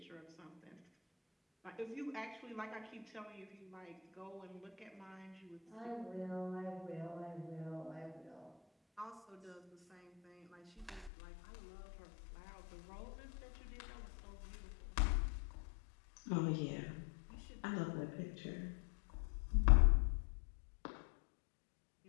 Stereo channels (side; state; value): right; drops out; at 11.1 s